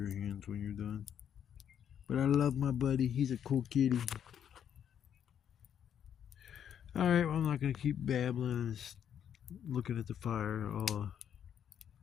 hands when you're done. But I love my buddy. He's a cool kitty. Alright, well, I'm not going to keep babbling and looking at the fire. I'll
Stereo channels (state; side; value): quieter; right; 9.0 dB